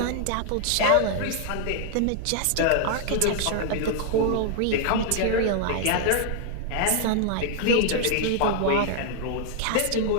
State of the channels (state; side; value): different; both; correlation 0.00